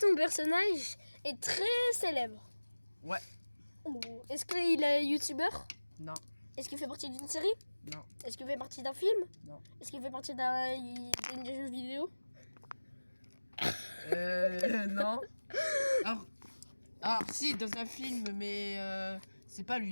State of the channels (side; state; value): both; inverted; correlation -1.00